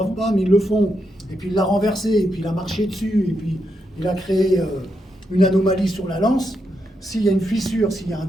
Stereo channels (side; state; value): both; normal; correlation 0.83